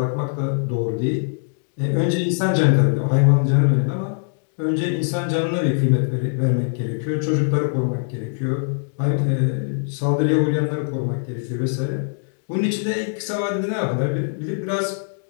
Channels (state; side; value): silent; right; digital silence